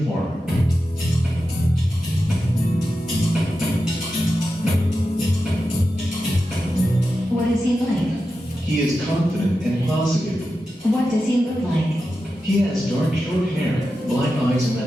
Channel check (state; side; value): normal; both; correlation 0.91